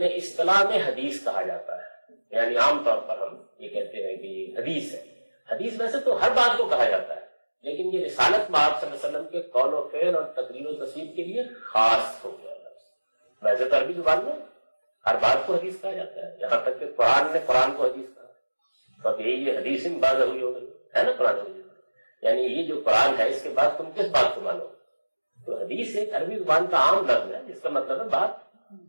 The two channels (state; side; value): inverted; both; correlation -1.00